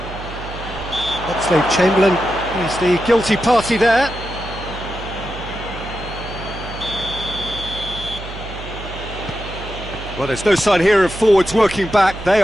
Oxlade-Chamberlain is the guilty party there. Well, there's no sign here of forwards working back. They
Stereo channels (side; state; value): right; noise; hum, 11 dB below the sound